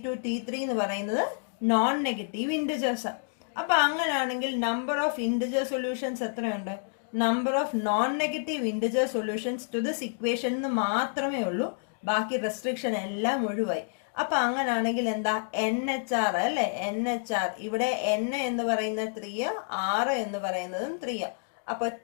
T3 എന്ന് പറയുന്നത് നോൺ നെഗറ്റീവ് ഇൻറ്റിജേഴ്സ്. അപ്പൊ അങ്ങനെയാണെങ്കിൽ നമ്പർ ഓഫ് ഇൻറ്റിജർ സൊല്യൂഷൻസ് എത്രയുണ്ട്? Number of non negative integer solutions to this equation എന്ന് മാത്രമേ ഉള്ളൂ, ബാക്കി റെസ്ട്രിക്ഷൻ എല്ലാം ഒഴിവായി. അപ്പൊ അങ്ങനെയാണെങ്കിൽ എന്താ? NHR അല്ലെ, NHR. ഇവിടെ N എന്ന് പറയുന്നത് 3, R എന്ന് പറയുന്നതും 3. അപ്പൊ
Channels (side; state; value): right; silent; digital silence